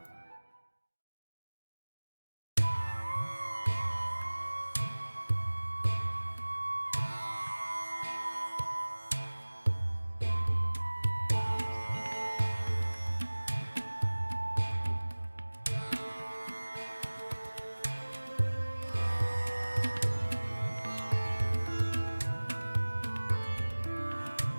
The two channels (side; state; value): both; inverted; correlation -1.00